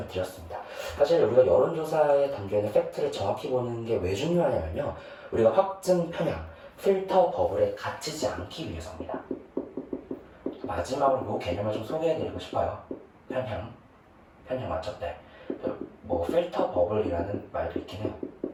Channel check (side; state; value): both; identical; correlation 1.00